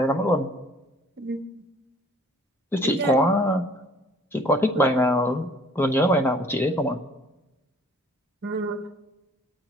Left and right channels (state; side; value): normal; both; correlation 0.55